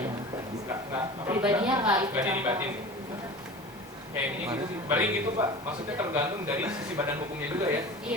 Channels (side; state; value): both; normal; correlation 0.36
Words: nggak Pribadinya nggak ikut nggak dilibatin. Kayak ini gitu sih. Berarti gitu Pak, maksudnya tergantung dari sisi badan hukumnya juga ya.